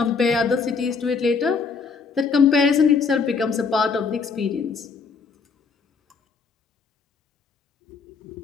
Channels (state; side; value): quieter; right; 5.1 dB